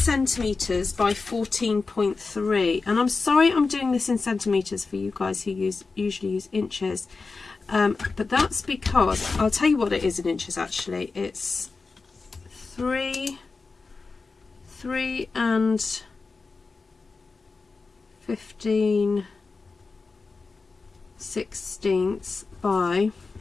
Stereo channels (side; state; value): right; quieter; 4.2 dB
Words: by 14.3. And I'm sorry I'm doing this in centimetres for you guys who usually use inches. But that's because, I'll tell you what it is in inches actually. It's 3 and 15/16 by,